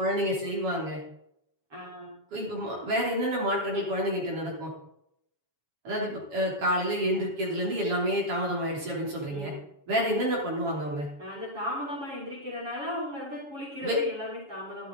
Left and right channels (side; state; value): left; late; 7.2 ms